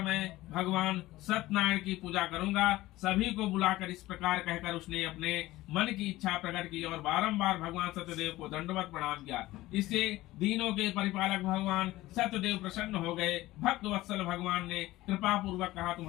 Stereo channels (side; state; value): right; quieter; 17.4 dB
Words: मैं भगवान सत्यनारायण की पूजा करूंगा। सभी को बुलाकर इस प्रकार कहकर उसने अपने मन की इच्छा प्रकट की और बारंबार भगवान सत्यदेव को दंडवत प्रणाम किया। इससे दीनों के परिपालक भगवान सत्यदेव प्रसन्न हो गए। भक्त वत्सल भगवान ने कृपा पूर्वक कहा,